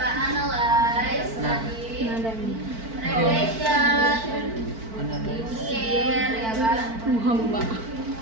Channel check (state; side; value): late; left; 4.5 ms